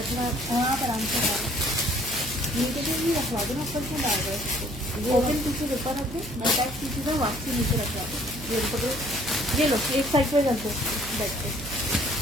अपना हाँ, पर आराम से नीचे से भी रखवा दो ना, ऊपर से डाल दो। ओपन पीछे ऊपर रखे, अटैच पीछे से वापसी नीचे रखवा दो। ये पकड़ो, ये लो एक साइड पे रख दो, बैठ के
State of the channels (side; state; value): right; noise; hum, 12 dB below the sound